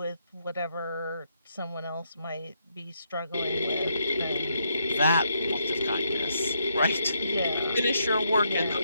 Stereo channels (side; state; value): both; inverted; correlation -0.77